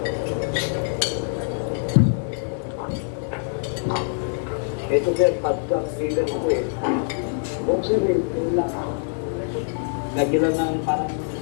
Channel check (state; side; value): silent; right; digital silence